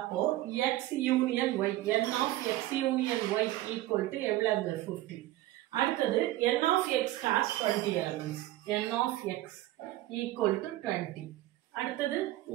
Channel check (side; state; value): left; quieter; 15.9 dB